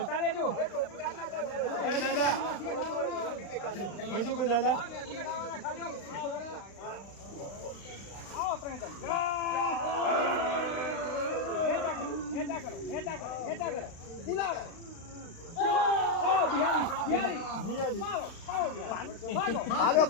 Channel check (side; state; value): right; late; 35 ms